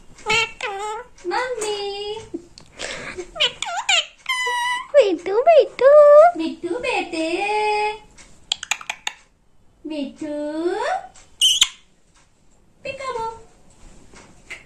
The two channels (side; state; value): both; identical; correlation 1.00